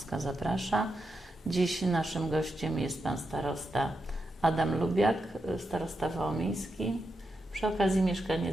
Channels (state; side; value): normal; both; correlation 0.86